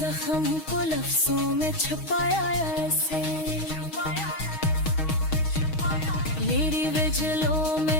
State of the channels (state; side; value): late; right; 6.3 ms